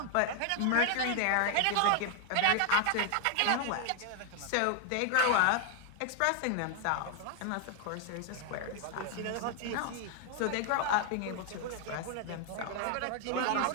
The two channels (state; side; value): different; both; correlation 0.00